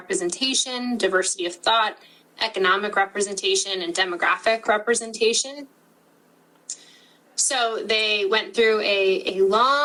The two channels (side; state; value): both; identical; correlation 1.00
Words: diversity of thought, economic representation, and demographic representation. So they went through a